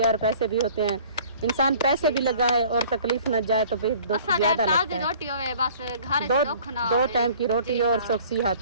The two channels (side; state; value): both; inverted; correlation -0.50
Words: और पैसे भी होते हैं, इंसान पैसे भी लगाए और तकलीफ न जाए तो फिर दुख ज्यादा लगता है। दो टाइम की रोटी और